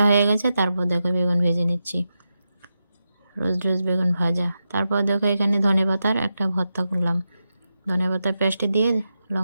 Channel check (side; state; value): both; inverted; correlation -0.89